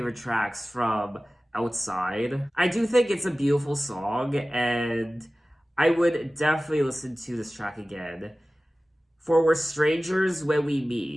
tracks from Outside. I do think it's a beautiful song, and I would definitely listen to this track again. For we're strangers when we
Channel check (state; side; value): normal; both; correlation 0.97